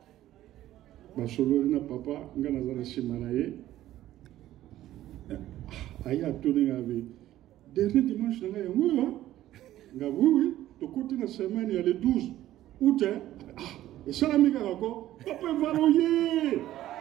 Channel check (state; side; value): quieter; left; 13.8 dB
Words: Basolo na papa, Ngana Zara Simanaye. Aya tourné avec. Dernier dimanche, Nanga Yango, Nga oui, de côté de la semaine, il y a le 12 août. Et ça, l'ami Garako, Papa Evala Oye.